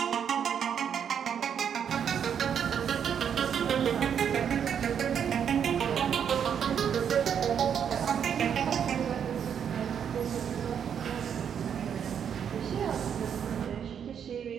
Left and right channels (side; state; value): left; quieter; 8.1 dB